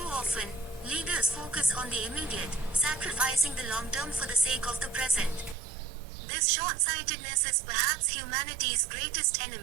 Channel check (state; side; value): drops out; left; at 5.6 s